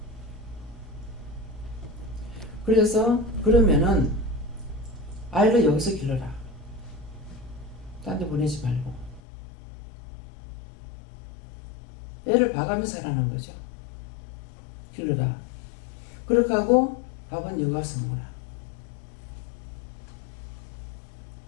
그래서 그러면은 아이를 여기서 길러라. 딴 데 보내지 말고. 애를 봐가면서 하라는 거죠. 길러라. 그렇게 하고 밥은 여기 와서 먹어라.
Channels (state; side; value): drops out; right; at 9.2 s